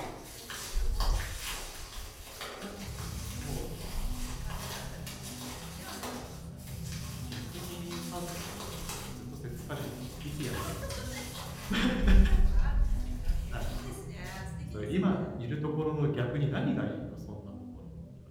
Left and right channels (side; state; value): both; identical; correlation 1.00